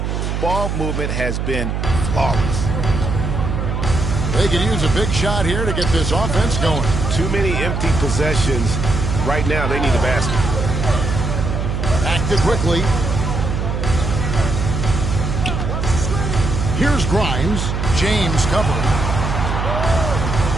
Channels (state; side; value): noise; right; hum, 1 dB below the sound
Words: Ball movement has been flawless. They could use a big shot here to get this offense going. Too many empty possessions. Right now, they need a basket. Back to quickly. Here's Grimes. James covering.